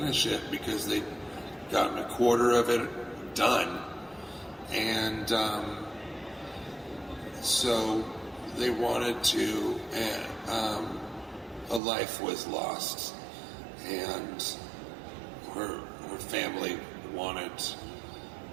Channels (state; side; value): drops out; left; at 11.8 s